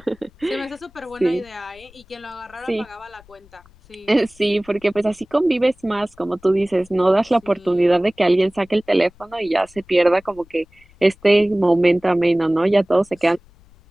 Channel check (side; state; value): left; noise; rumble, 27 dB below the sound